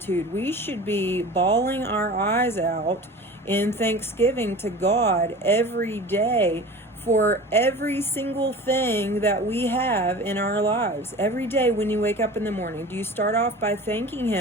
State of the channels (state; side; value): normal; both; correlation 0.37